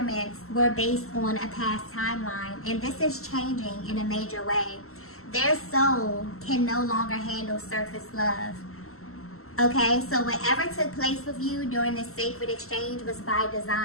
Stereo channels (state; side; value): late; right; 0.63 ms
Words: were based on a past timeline, and this is changing in a major way. Their soul can no longer handle surface love. Okay, so whatever took place with you during this sacred exchange was by